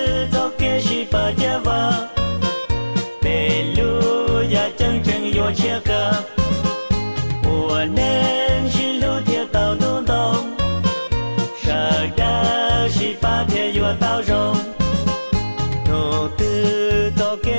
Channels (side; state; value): both; inverted; correlation -1.00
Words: cho kê chỉ ba gia va bê lu ya chân chân yo chia ca của nên chỉ lu theo tao đúng đông sợ đã chỉ ba theo yo tao rong nô tư cho